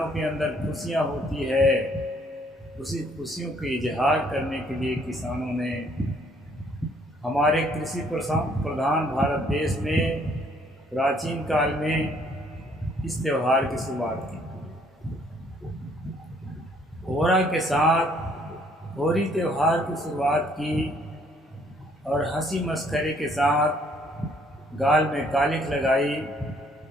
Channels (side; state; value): both; normal; correlation 0.64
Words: के अंदर खुशियाँ होती है। उसी खुशियों के इजहार करने के लिए किसानों ने हमारे कृषि प्रधान भारत देश में प्राचीन काल में इस त्यौहार की शुरुआत की। होरा के साथ होली त्यौहार की शुरुआत की और हंसी मस्खरे के साथ गाल में कालिख लगाई